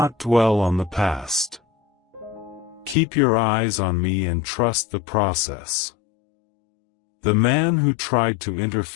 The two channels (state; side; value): drops out; right; at 3.0 s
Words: dwell on the past. Keep your eyes on me and trust the process. The man who tried to